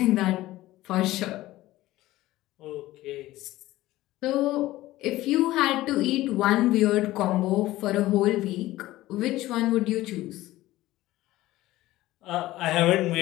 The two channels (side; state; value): right; quieter; 16.6 dB